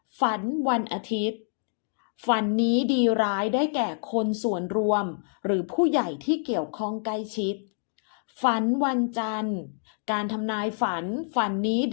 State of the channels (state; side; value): silent; right; digital silence